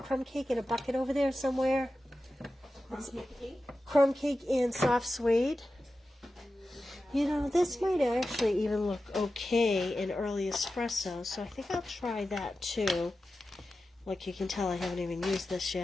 crumb cake in a bucket over there somewhere? Crumb cake and soft suede. You know, this might actually even look okay in early espresso, so I think I'll try that too. Like you can tell, I haven't even used this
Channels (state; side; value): normal; both; correlation 0.93